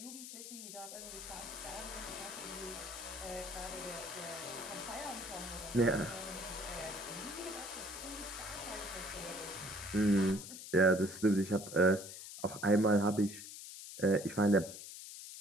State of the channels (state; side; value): noise; left; hiss, 11 dB below the sound